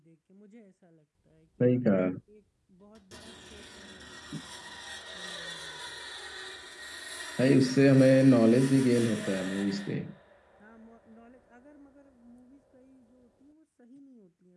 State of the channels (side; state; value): both; identical; correlation 1.00